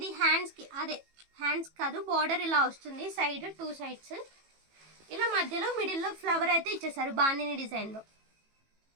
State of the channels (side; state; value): left; late; 18 ms